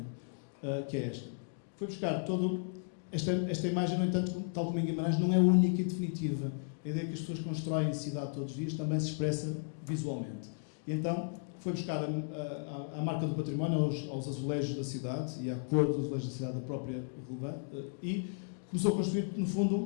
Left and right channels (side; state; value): right; silent; digital silence